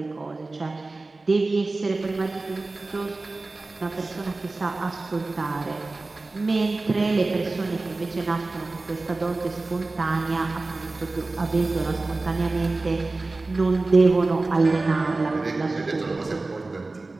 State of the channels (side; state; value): left; quieter; 3.3 dB